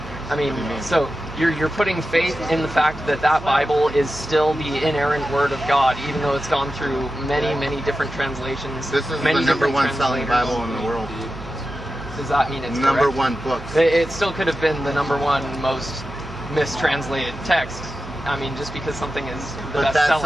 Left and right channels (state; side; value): noise; right; hum, 13 dB below the sound